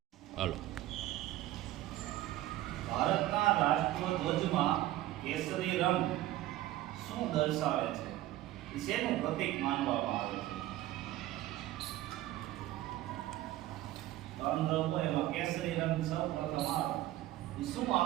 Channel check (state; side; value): quieter; left; 15.2 dB